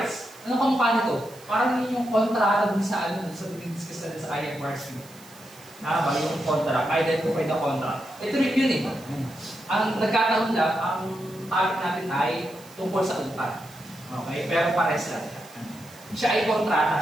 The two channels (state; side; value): noise; right; hiss, 23 dB below the sound